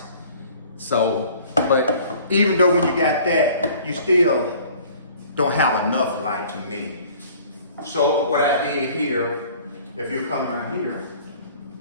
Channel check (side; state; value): both; inverted; correlation -0.51